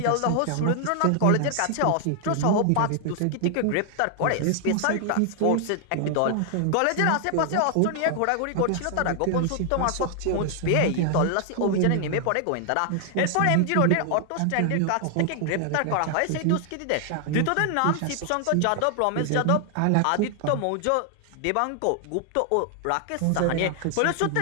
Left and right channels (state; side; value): different; both; correlation 0.00